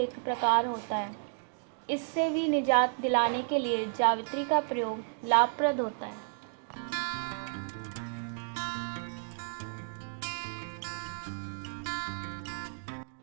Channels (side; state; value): left; silent; digital silence